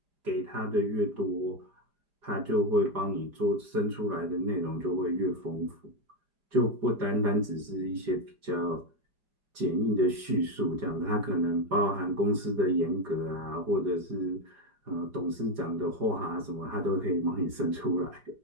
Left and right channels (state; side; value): late; left; 5.0 ms